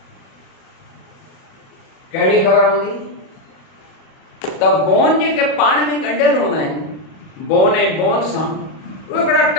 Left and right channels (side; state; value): right; late; 37 ms